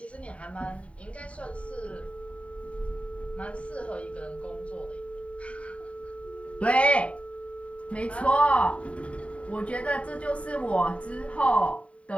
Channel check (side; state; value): right; late; 0.064 ms